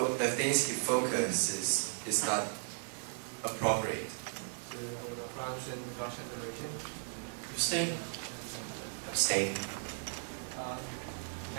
focuses is not appropriate. France and Russian Federation? Abstain. Abstain.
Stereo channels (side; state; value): left; silent; 54 dB below the other